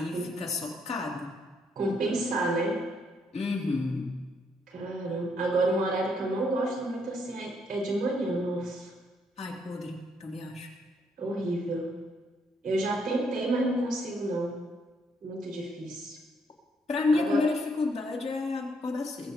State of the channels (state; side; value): normal; both; correlation 0.72